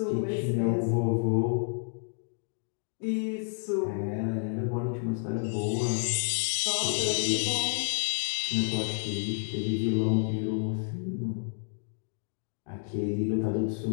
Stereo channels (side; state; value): right; silent; 58 dB below the other